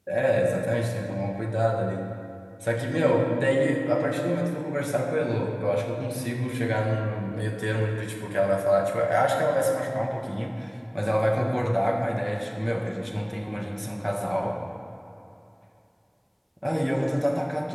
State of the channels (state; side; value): identical; both; correlation 1.00